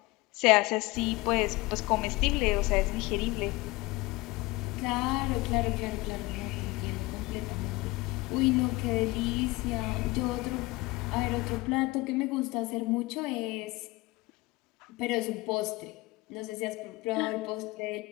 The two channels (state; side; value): quieter; right; 21.6 dB